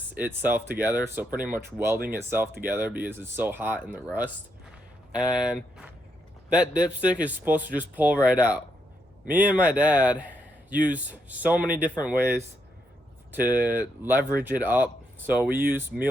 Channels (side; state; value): both; normal; correlation 0.79